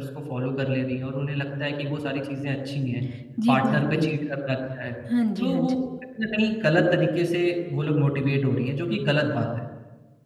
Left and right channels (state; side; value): identical; both; correlation 1.00